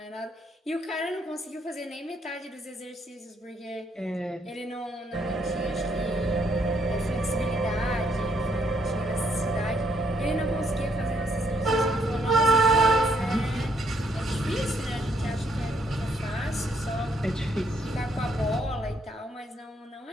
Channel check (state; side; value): normal; both; correlation 0.71